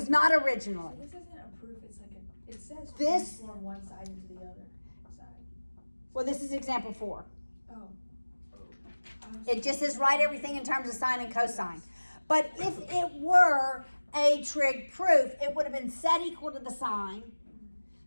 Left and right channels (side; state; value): both; inverted; correlation -1.00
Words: not So originally. this isn't a proof, it's like a, it says This- transform one side into the other side. Well, this is example 4. Oh. It just says write everything in terms of sine and cosine. But if it were a trig proof, it would have been set equal to the sine.